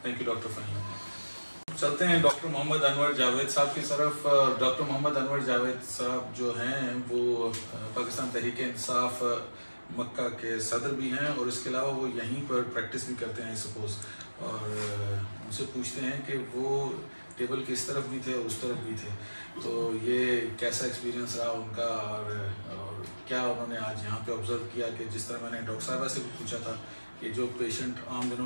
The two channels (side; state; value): both; inverted; correlation -1.00